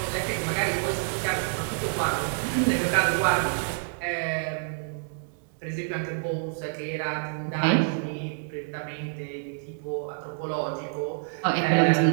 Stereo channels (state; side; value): silent; left; 60 dB below the other